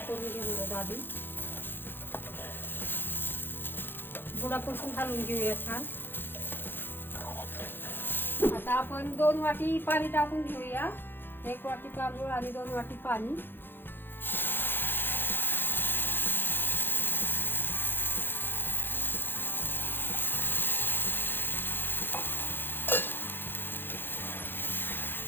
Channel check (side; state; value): right; late; 0.10 ms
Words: करून घेणार आहोत. आधी बुडापासून घालून घेऊया छान. आता आपण 2 वाटी पाणी टाकून घेऊया. 1 वाटी तांदूळ आणि 2 वाटी पाणी.